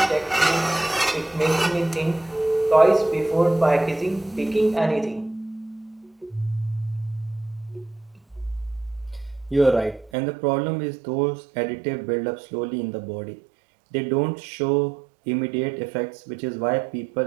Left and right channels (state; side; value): drops out; left; at 10.1 s